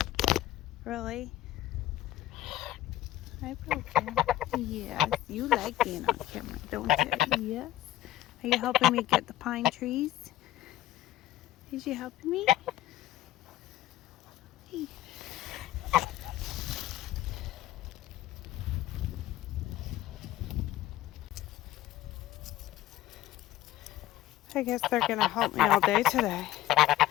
Really? Hi, Broken. Yes, you like being on camera, don't you? Yes. Are you helping me get the pine trees? Is you helping me? Hey. I guess they're gonna help me all day today.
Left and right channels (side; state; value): right; quieter; 14.7 dB